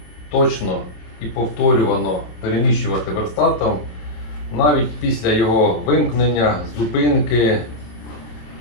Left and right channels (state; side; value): late; right; 27 ms